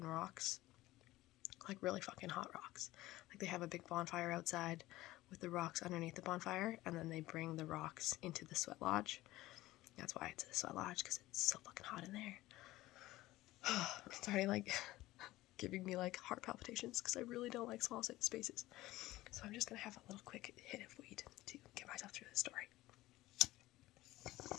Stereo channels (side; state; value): right; quieter; 17.3 dB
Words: rocks, like really fucking hot rocks. Like they have a big bonfire outside with the rocks underneath the bonfire, and then they bring the rocks into the sweat lodge. That's why it's a sweat lodge, because it's so fucking hot in there. It's already like giving me like heart palpitations because I really don't like small spaces. So I'm just gonna have a little quick hit of weed to get myself through the story.